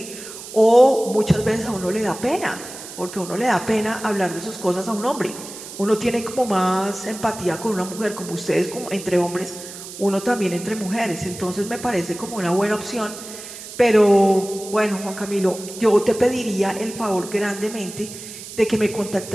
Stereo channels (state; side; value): noise; right; hiss, 13 dB below the sound